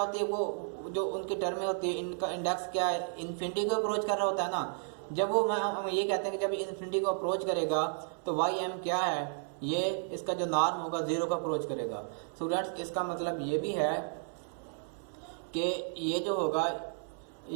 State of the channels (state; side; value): silent; left; 56 dB below the other